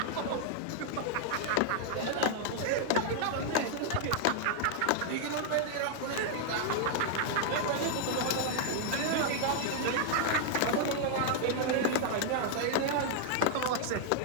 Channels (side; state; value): both; different; correlation 0.00